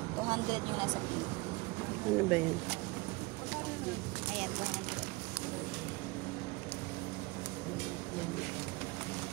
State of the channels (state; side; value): quieter; left; 23.9 dB